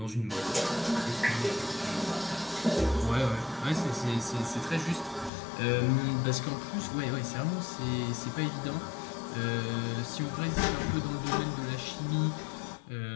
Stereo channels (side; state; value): right; drops out; at 5.3 s